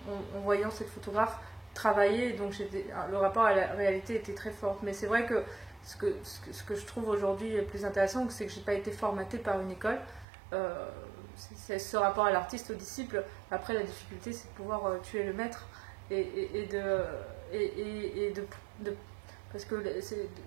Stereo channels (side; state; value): left; drops out; at 10.2 s